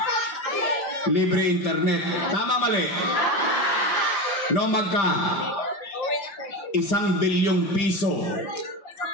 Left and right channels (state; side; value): late; right; 5.1 ms